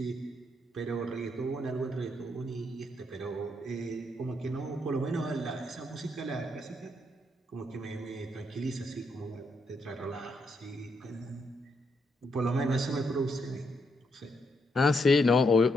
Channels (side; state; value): both; normal; correlation 0.78